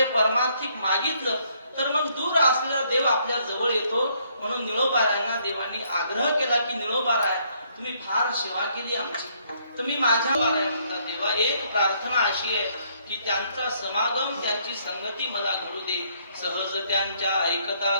परमार्थिक मागितलं तर मग दूर असलेला देव आपल्या जवळ येतो. म्हणून निळोबारायांना देवानी आग्रह केला की निळोबाराय तुम्ही फार सेवा केली आमची, तुम्ही माझ्या बाराय म्हणता. देवा एक प्रार्थना अशी आहे की त्यांचा समागम, त्यांची संगती मला घडू दे. सहज त्यांच्या ऐकता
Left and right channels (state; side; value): inverted; both; correlation -0.68